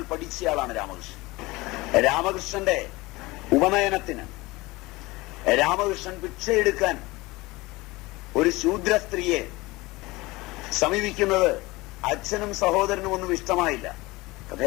പഠിച്ചയാളാണ് രാമകൃഷ്ണൻ. രാമകൃഷ്ണന്റെ ഉപനയനത്തിന്, രാമകൃഷ്ണൻ ഭിക്ഷയെടുക്കാൻ ഒരു ശൂദ്ര സ്ത്രീയെ സമീപിക്കുന്നത് അച്ഛനും സഹോദരനും ഒന്നും ഇഷ്ടമായില്ല. കഥ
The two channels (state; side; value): quieter; right; 21.5 dB